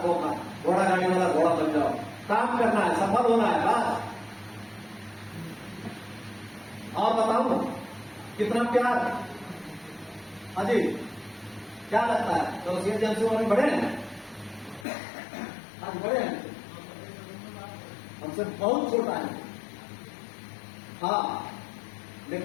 अपना, घोड़ा गाड़ी वाला घोड़ा बन जाओ, काम करना है, सफल होना है, बस। और बताओ कितना प्यार। अजी क्या लगता है, तो एजेंसी वाले बढ़े हैं? आज बड़े हैं, हमसे बहुत छोटा है। हाँ,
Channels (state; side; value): drops out; right; at 14.9 s